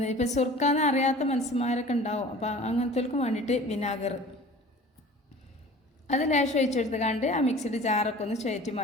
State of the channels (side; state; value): both; normal; correlation 0.43